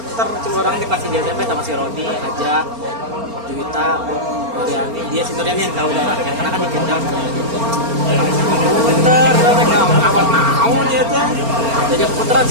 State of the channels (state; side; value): late; left; 4.3 ms